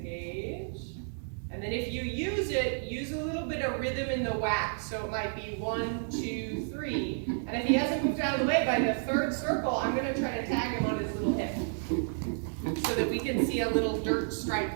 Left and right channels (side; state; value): left; silent; digital silence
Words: And then if you use it, use a little bit of rhythm in the whack. So it might be 1, 2, 3. And if he hasn't moved out of the way by the 3rd circle, I'm going to try to tag him on his little hip. So that we can see a little dirt stripe